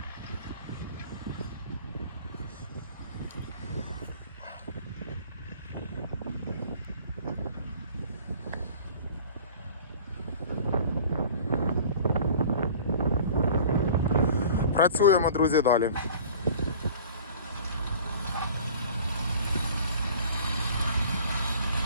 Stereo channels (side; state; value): both; inverted; correlation -0.46